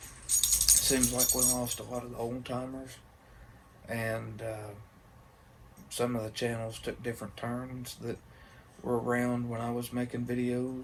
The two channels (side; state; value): both; identical; correlation 1.00